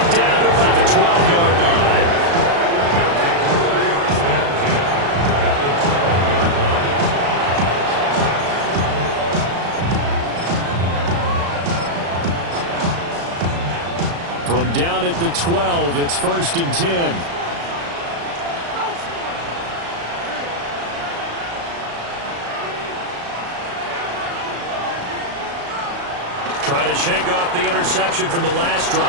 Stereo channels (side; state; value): left; late; 35 ms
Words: down to about the 12-yard line. From down at the 12, it's 1st and 10. Trying to shake off the interception from the last